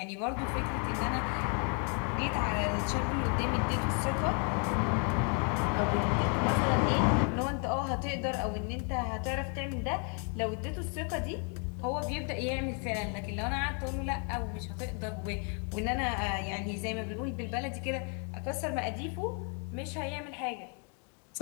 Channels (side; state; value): right; quieter; 39.4 dB